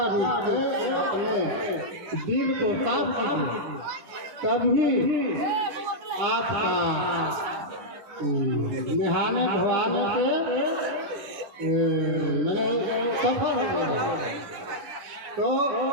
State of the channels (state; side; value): late; left; 9.9 ms